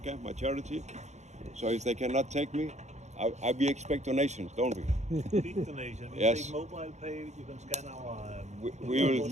my charity. So if they cannot take me, we expect donations, don't we? Big donation. We Yes. take mobile pay. You can scan our.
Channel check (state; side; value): late; left; 0.33 ms